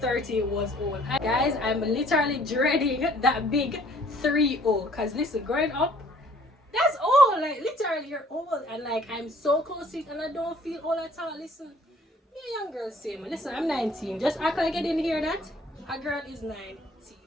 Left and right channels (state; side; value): normal; both; correlation 0.57